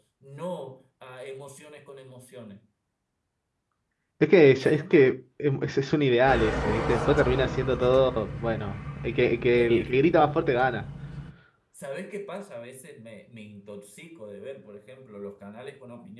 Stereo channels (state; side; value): identical; both; correlation 1.00